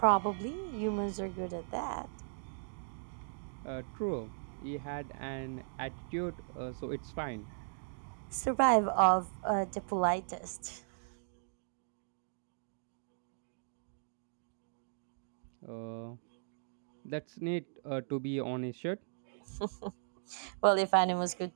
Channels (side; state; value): left; silent; digital silence